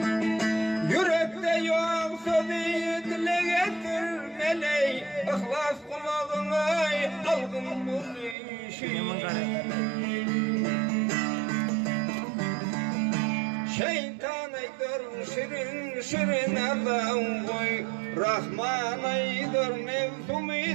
Yürekte yok sözü dile getirmeley. İhlas kulağına algın bu işi. Şeytan aydır şirin şirin adam koy. Rahman aydır nefsum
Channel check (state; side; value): drops out; left; at 8.3 s